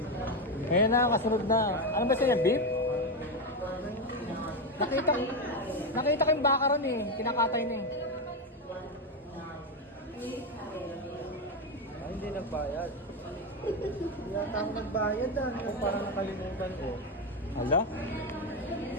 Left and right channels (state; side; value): normal; both; correlation 0.10